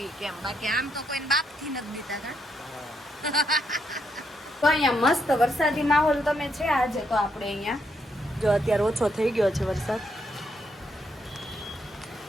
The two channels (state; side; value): normal; both; correlation 0.77